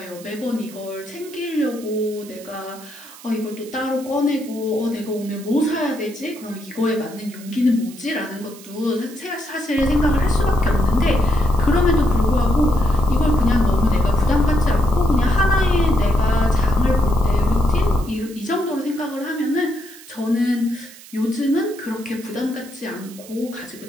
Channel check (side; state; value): right; noise; hiss, 19 dB below the sound